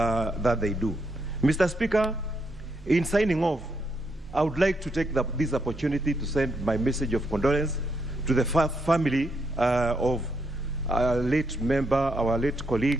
they do. Mr. Speaker, in signing off, I would like to take this opportunity to send my message of condolence to the family of our late member, our late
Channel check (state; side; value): normal; both; correlation 0.78